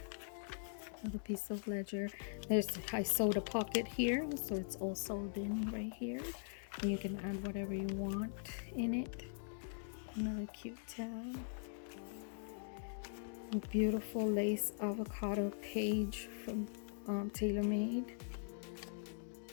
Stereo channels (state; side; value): silent; right; digital silence